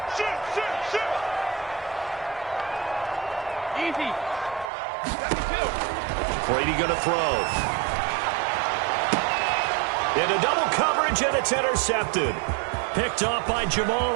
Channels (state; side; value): drops out; left; at 4.7 s